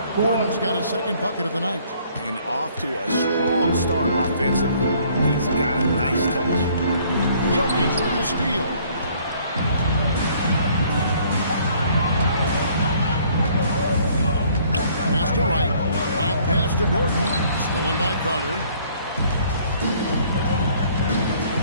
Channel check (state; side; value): inverted; both; correlation -0.60